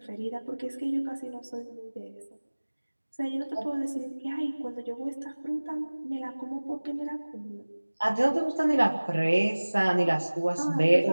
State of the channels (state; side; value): inverted; both; correlation -1.00